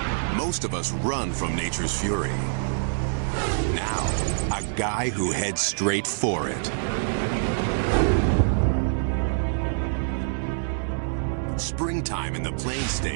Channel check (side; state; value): left; silent; digital silence